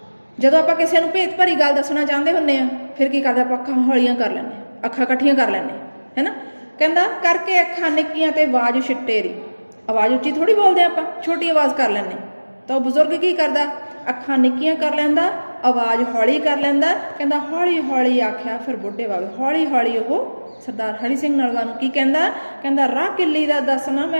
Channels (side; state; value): both; inverted; correlation -1.00